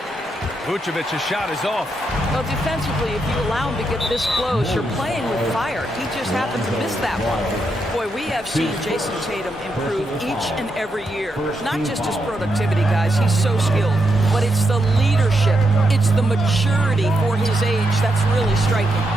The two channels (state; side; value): normal; both; correlation 0.82